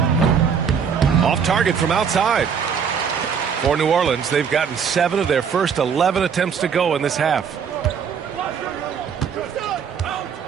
Off target from outside. For New Orleans, they've gotten 7 of their first 11 attempts to go in this half.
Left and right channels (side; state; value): left; quieter; 6.9 dB